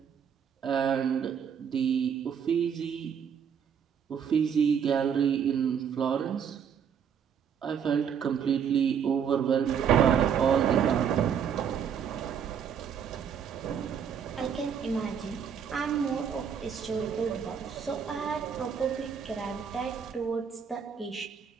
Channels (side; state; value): left; quieter; 7.6 dB